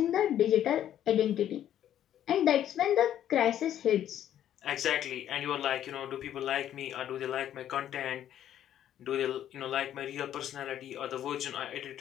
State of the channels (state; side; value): quieter; right; 11.0 dB